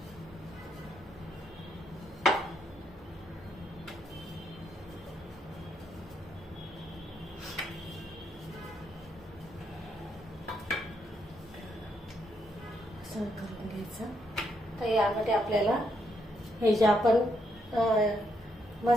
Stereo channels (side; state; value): both; normal; correlation 0.77